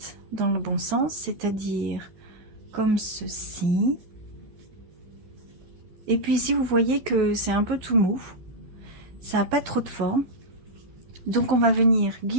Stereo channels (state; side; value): late; left; 12 ms